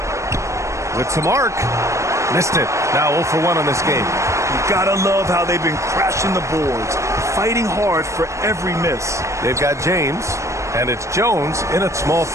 With some arc. Missed it. Now 0 for 1 on this game. You gotta love how they've been crashing the boards, fighting hard for every miss. They've got James, and it's Jones in at small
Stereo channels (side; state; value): left; late; 0.15 ms